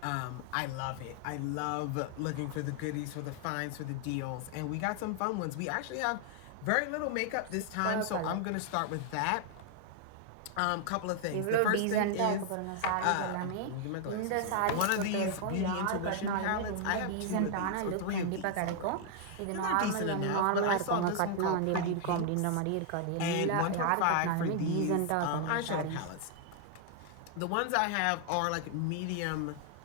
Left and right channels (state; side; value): different; both; correlation 0.00